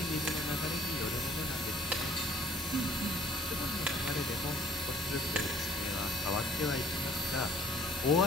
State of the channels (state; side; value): normal; both; correlation 0.56